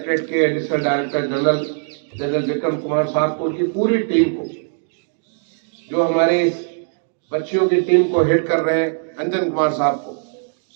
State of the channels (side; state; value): left; silent; digital silence